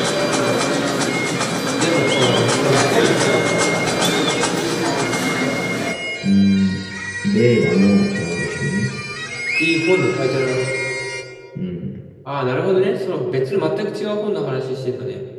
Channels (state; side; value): identical; both; correlation 1.00